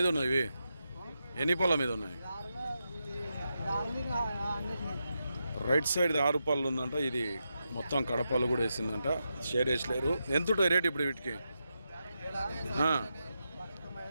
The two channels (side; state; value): both; inverted; correlation -0.87